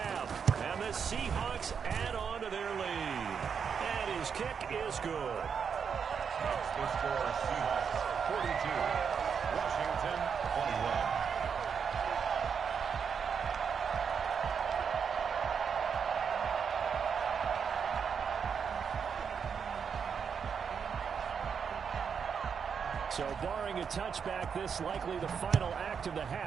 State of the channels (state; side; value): quieter; left; 6.7 dB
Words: And the Seahawks add on to their lead. And his kick is good. That's the score, Seahawks 42, Washington 21. So barring a touchback, this likely the final act of the